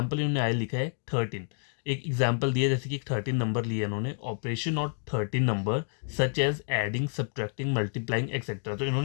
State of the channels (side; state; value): right; silent; 58 dB below the other